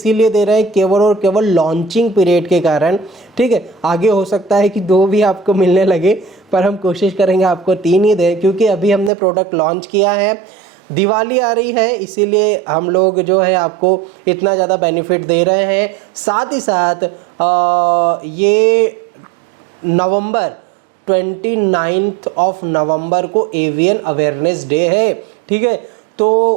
दे रहे हैं केवल और केवल लॉन्चिंग पीरियड के कारण, ठीक है। आगे हो सकता है कि 2 भी आपको मिलने लगे, पर हम कोशिश करेंगे आपको 3 ही दें, क्योंकि अभी हमने प्रोडक्ट लॉन्च किया है। दिवाली आ रही है इसीलिए हम लोग जो है आपको इतना ज़्यादा बेनिफिट दे रहे हैं। साथ ही साथ ये नवंबर 29 नवंबर को एवियन अवेयरनेस डे है, ठीक है। तो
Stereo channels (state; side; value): drops out; left; at 9.1 s